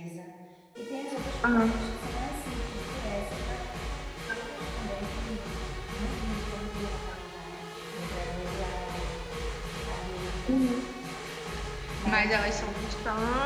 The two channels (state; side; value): identical; both; correlation 1.00